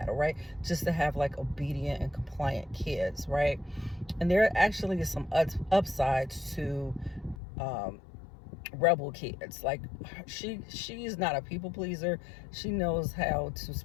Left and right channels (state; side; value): drops out; right; at 7.4 s